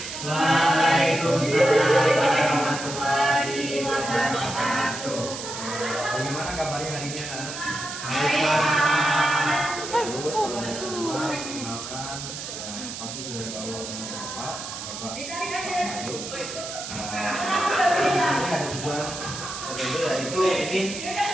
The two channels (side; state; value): right; noise; hiss, 8 dB below the sound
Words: Waalaikumsalam warahmatullahi wabarakatuh. Bagaimana kabarnya hari ini anak-anak? Terus kalau mau semua kenalkan, pasti sudah tahu nama Bapak Ayu. Di sini ada tujuan tertentu, yaitu ini